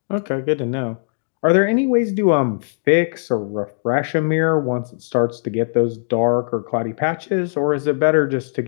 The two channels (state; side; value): silent; right; digital silence